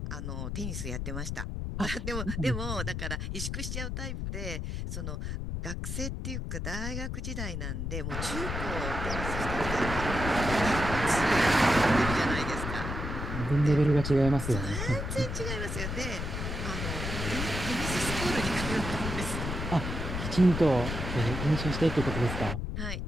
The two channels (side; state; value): left; noise; rumble, 4 dB below the sound